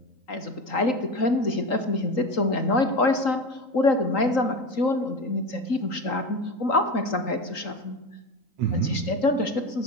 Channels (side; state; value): right; late; 3.8 ms